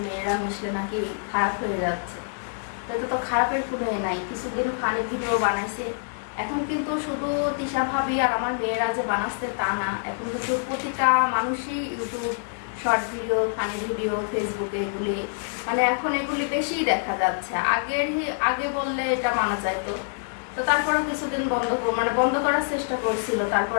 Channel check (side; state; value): right; silent; digital silence